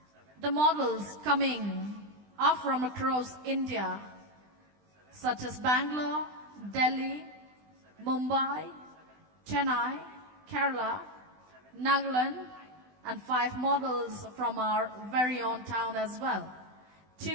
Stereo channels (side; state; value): left; late; 20 ms